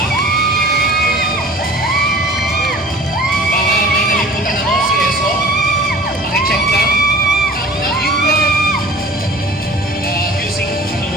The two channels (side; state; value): both; normal; correlation 0.44